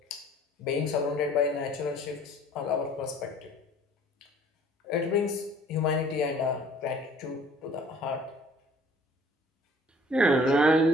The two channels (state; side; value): normal; both; correlation 0.54